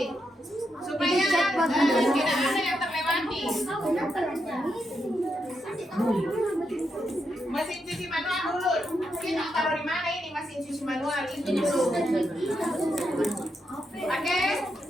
Supaya tidak ada yang terlewati. Mesin cuci manual dulu. Kita taruh di mana ini mesin cuci manual itu dulu. Oke,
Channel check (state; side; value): normal; both; correlation 0.83